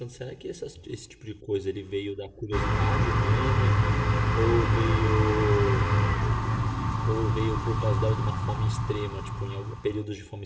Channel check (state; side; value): identical; both; correlation 1.00